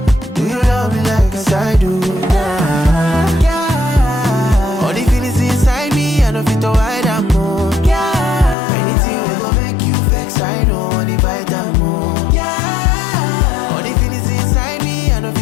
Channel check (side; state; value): right; drops out; at 8.6 s